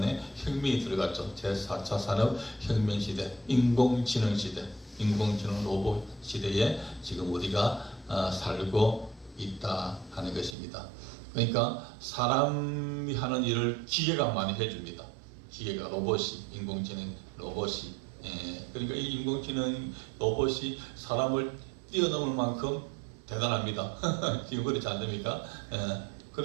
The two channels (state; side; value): drops out; left; at 10.6 s